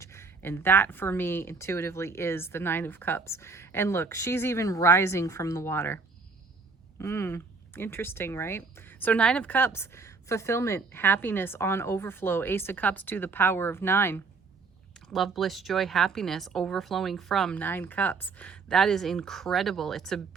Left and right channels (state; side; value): quieter; left; 4.5 dB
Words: And that, for me, intuitively is the Nine of Cups. And look, she's even rising from the water. Interesting, right? So Nine of Cups, fulfillment, happiness on overflow. Ace of Cups to the power of 9. Love, bliss, joy, happiness, overflowing from 9 cups. That is incredible. It's a